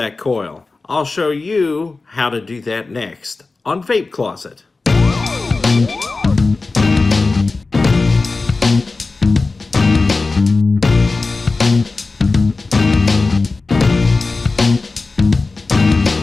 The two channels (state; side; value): quieter; right; 3.7 dB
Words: coil. I'll show you how to do that next on Vape Closet.